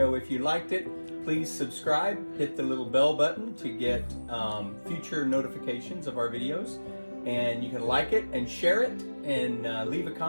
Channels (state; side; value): inverted; both; correlation -1.00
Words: If you liked it, please subscribe, hit the little bell button to get future notifications of our videos. And you can like it and share it and leave a